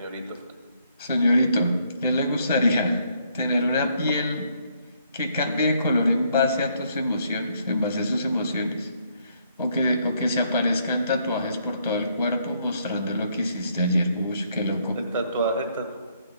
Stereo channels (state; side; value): inverted; both; correlation -0.70